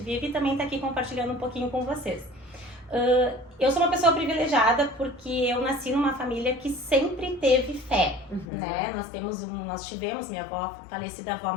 vive e também tá aqui compartilhando um pouquinho com vocês. Eu sou uma pessoa privilegiada porque eu nasci numa família que sempre teve fé, né? Nós tivemos minha avó, falecida avó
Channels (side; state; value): right; drops out; at 8.5 s